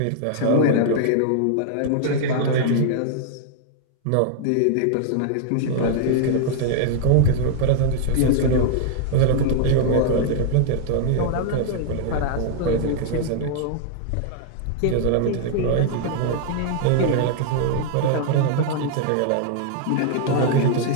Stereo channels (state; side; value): different; both; correlation -0.01